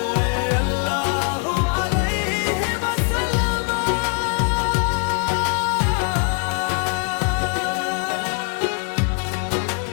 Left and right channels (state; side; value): quieter; right; 35.3 dB